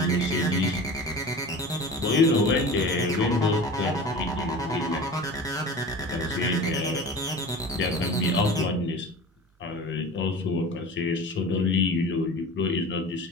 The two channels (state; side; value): normal; both; correlation 0.36